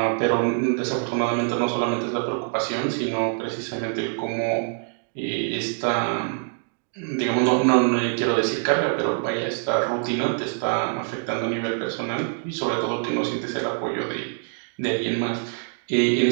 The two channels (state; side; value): silent; left; 56 dB below the other